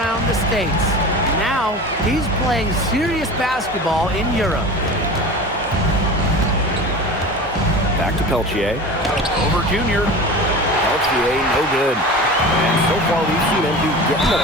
the States. Now, he's playing serious basketball in Europe. Back to Peltier. Over Junior. Peltier, no good. And so far, we've seen MP getting the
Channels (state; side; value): normal; both; correlation 0.34